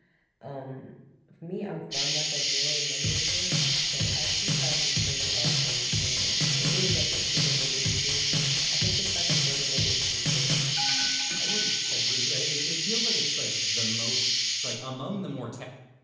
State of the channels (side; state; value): both; identical; correlation 1.00